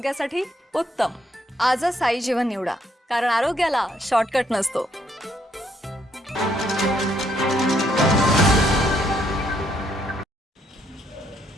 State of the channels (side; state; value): both; normal; correlation 0.71